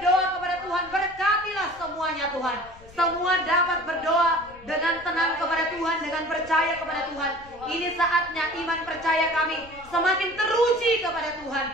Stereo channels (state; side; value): noise; left; rumble, 22 dB below the sound